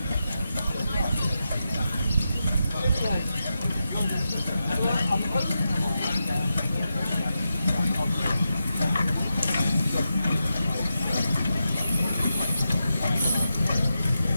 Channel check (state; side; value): inverted; both; correlation -0.89